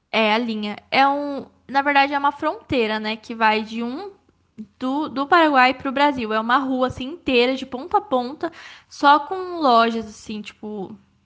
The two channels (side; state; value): both; identical; correlation 1.00